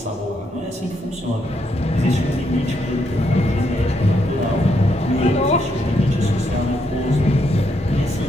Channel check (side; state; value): both; normal; correlation 0.77